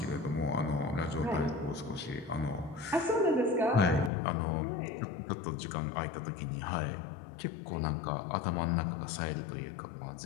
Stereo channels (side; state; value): right; drops out; at 4.1 s